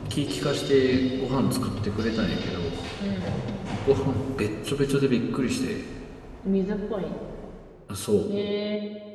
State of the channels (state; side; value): identical; both; correlation 1.00